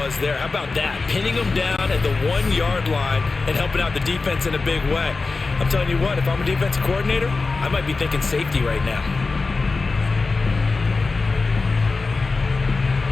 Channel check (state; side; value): quieter; right; 3.9 dB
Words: there. How about that? Pinning him down at the 1-yard line and helping out the defense in a big way. I'm telling you what, if I'm a defensive coordinator, I might be thinking safety right now.